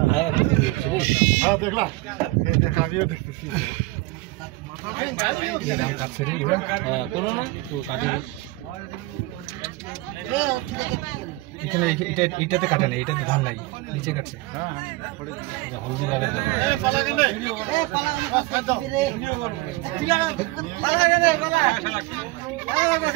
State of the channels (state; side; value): quieter; left; 20.8 dB